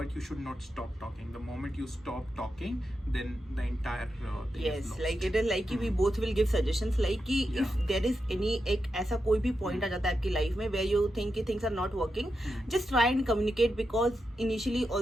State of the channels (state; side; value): normal; both; correlation 0.88